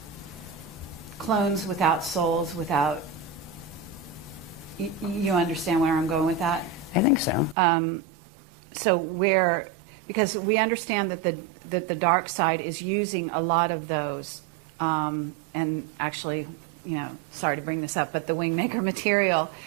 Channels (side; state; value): left; drops out; at 7.6 s